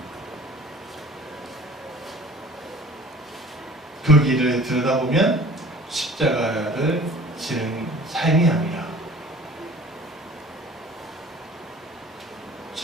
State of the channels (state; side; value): normal; both; correlation 0.46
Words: 그 길을 들여다보면 십자가를 지는 삶이 아니라